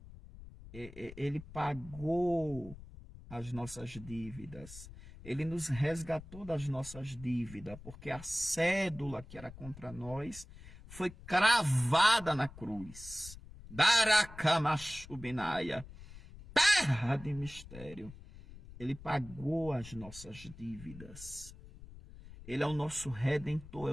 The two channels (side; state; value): left; noise; rumble, 16 dB below the sound